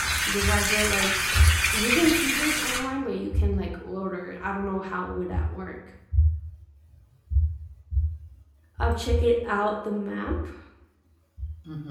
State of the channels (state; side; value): identical; both; correlation 1.00